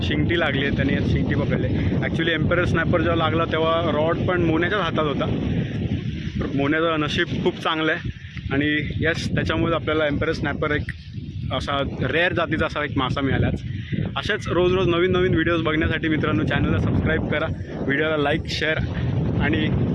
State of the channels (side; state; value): both; identical; correlation 1.00